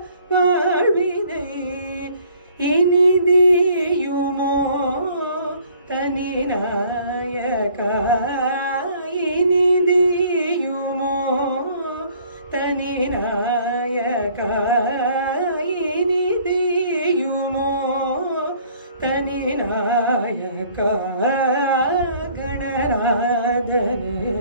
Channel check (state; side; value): inverted; both; correlation -0.58